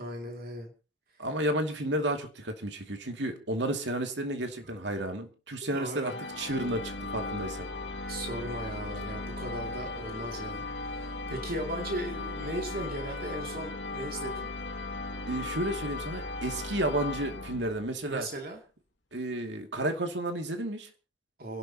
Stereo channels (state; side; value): normal; both; correlation 0.20